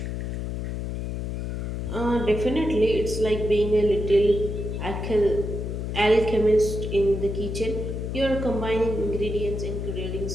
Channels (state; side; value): noise; left; hum, 4 dB below the sound